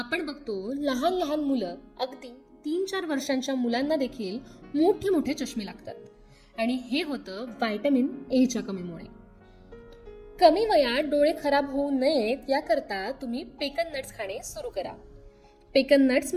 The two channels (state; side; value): identical; both; correlation 1.00